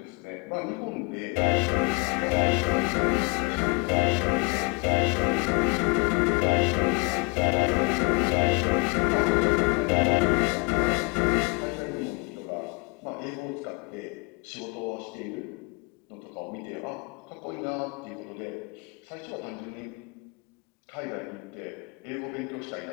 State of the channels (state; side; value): quieter; right; 29.8 dB